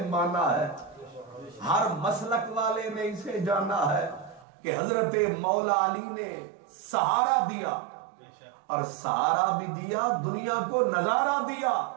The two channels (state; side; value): drops out; left; at 4.5 s